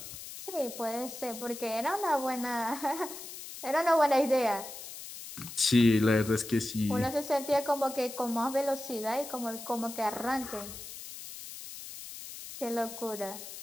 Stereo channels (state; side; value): noise; left; hiss, 12 dB below the sound